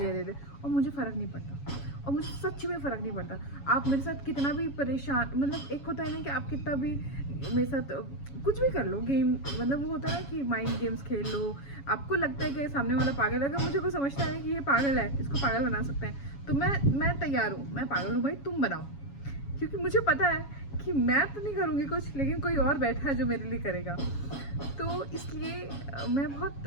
दे दे, और मुझे फ़र्क नहीं पड़ता, और मुझे सच में फ़र्क नहीं पड़ता। आप मेरे साथ कितना भी परेशान, मतलब एक होता है ना कि आप कितना भी मेरे साथ कुछ भी कर लो, गेम, मतलब वो होता है ना कि माइंड गेम्स खेल लो, आपको लगता है कि सामने वाला पागल है, अगर मुझे कोई समझता है कि ये पागल है, इसको पागल बना सकते हैं, तो मैं तैयार हूँ, मैं पागल हूँ भाई, तुम बनाओ, क्योंकि मुझे पता है कि मैं तो नहीं करूँगी कुछ, लेकिन कोई और बैठा है जो मेरे लिए करेगा। तो इसलिए मैं बहुत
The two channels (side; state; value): right; late; 7.2 ms